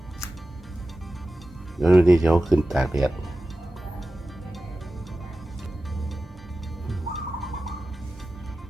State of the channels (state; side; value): normal; both; correlation 0.94